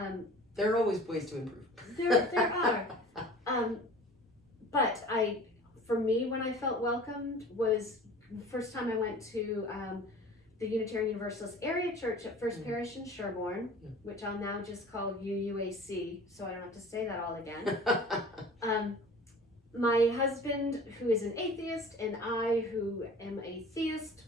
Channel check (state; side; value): normal; both; correlation 0.43